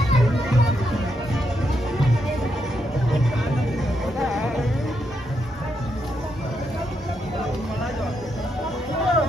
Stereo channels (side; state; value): both; normal; correlation 0.80